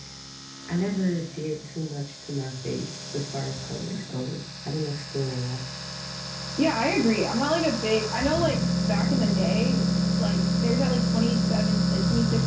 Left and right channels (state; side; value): identical; both; correlation 1.00